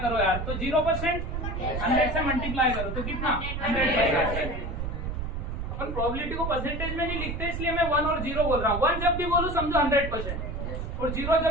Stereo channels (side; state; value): right; noise; rumble, 4 dB below the sound